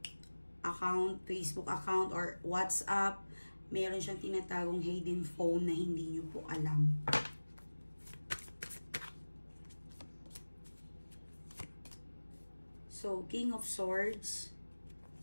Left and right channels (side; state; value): both; inverted; correlation -1.00